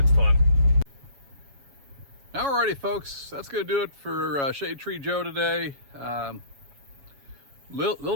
fun. Alrighty folks, that's gonna do it for Shade Tree Joe today. Little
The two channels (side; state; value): left; late; 7.2 ms